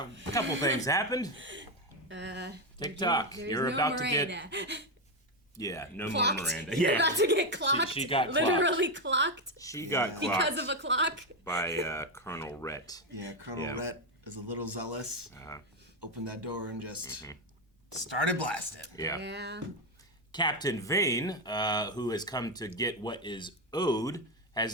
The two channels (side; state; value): both; normal; correlation 0.09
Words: couple things happened. TikTok. You're no about Miranda. to get... Yeah, no Clocked. more Miranda. You're Yeah. about to get clocked. She got literally clocked. She got clocked. Because of a clock. By Colonel Rhett. Yeah, Colonel Rhett is a little zealous. Opened that door and just started blasting. Yeah. Captain Vane, who has come to get what is owed,